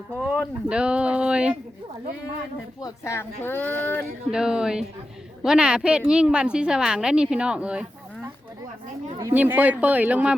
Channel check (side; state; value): both; normal; correlation 0.91